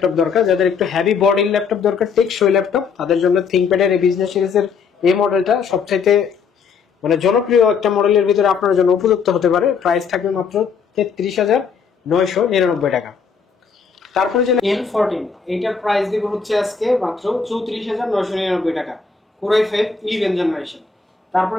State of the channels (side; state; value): right; quieter; 5.8 dB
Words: দরকার যাদের একটু হেভি বডির ল্যাপটপ দরকার টেকসই ল্যাপটপ তাদের জন্য থিংকপ্যাডের এই বিজনেস সিরিজের এই মডেলটা সবচাইতে মানে জনপ্রিয় একটা মডেলের ভিতরে আপনার জন্য উপযুক্ত হতে পারে প্রাইস থাকবে মাত্র 33999 টাকা তারপরে যে L14 এইটার প্রাইস দিব হচ্ছে আজকে মাত্র 34999 টাকা Core i5 11 জেনারেশন তারপর